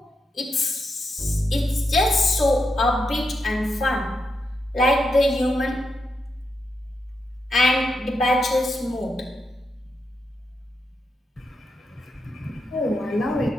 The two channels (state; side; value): normal; both; correlation 0.84